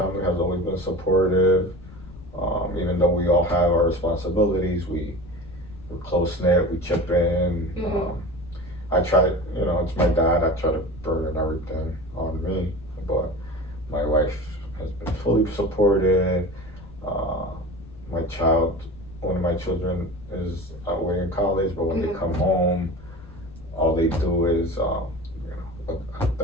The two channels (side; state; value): left; noise; rumble, 18 dB below the sound